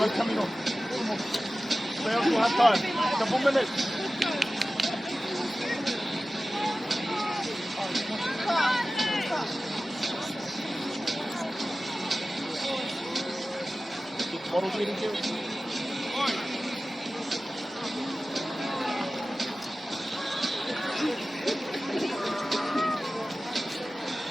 coming on. Stay on for half time. Couple minutes. Model leading here.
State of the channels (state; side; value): normal; both; correlation 0.96